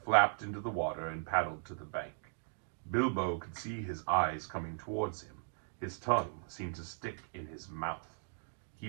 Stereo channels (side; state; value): left; silent; digital silence